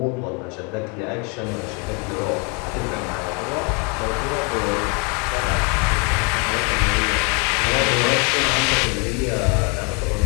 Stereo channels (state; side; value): quieter; right; 33.3 dB